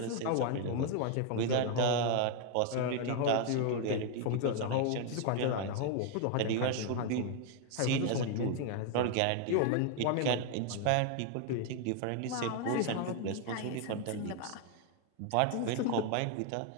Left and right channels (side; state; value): both; different; correlation 0.01